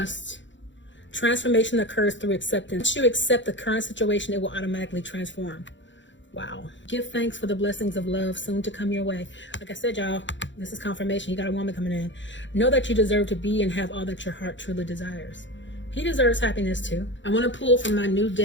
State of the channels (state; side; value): late; right; 0.54 ms